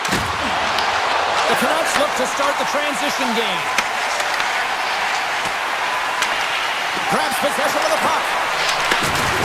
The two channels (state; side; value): identical; both; correlation 1.00